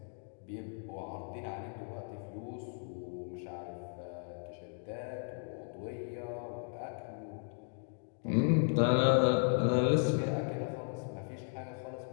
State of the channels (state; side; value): silent; right; 54 dB below the other